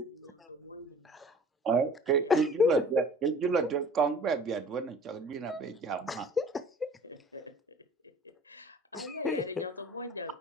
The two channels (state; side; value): normal; both; correlation 0.47